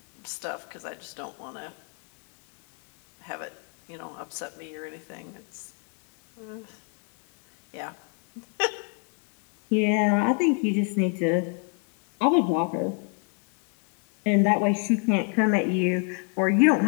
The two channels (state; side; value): quieter; right; 38.4 dB